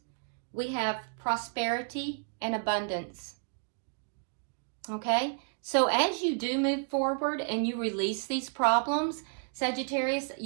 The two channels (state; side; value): quieter; left; 39.9 dB